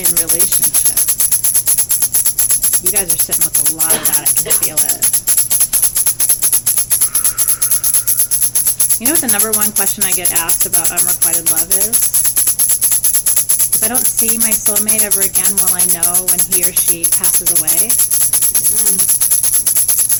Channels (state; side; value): identical; both; correlation 1.00